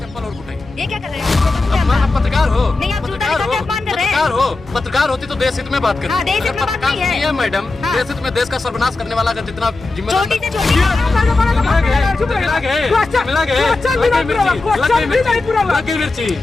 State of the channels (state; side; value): quieter; right; 3.4 dB